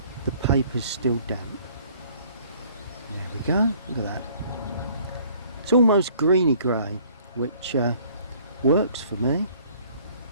the paper's still damp. There we go, look at that. It's almost greeny grey, which works for me.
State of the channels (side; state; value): both; inverted; correlation -0.57